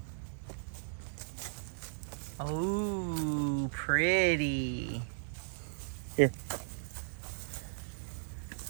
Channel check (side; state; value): left; silent; digital silence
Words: Oh, pretty. Here.